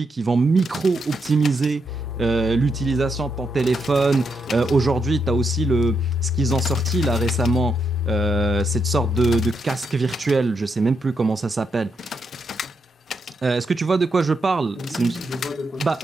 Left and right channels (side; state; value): both; normal; correlation 0.81